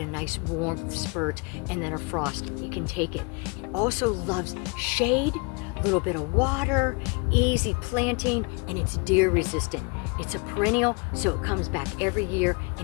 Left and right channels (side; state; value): right; quieter; 31.7 dB